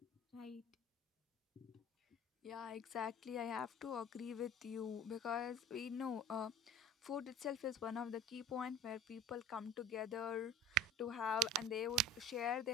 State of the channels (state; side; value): normal; both; correlation 0.43